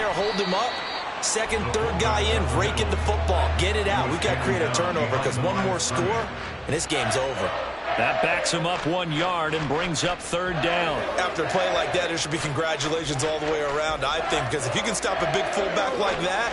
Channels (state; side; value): identical; both; correlation 1.00